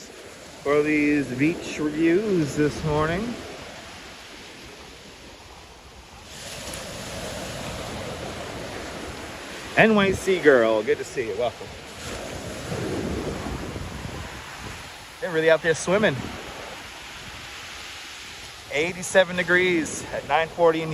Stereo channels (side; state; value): both; identical; correlation 1.00